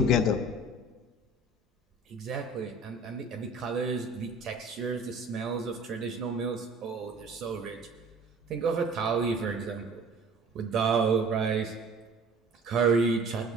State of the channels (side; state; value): both; normal; correlation 0.47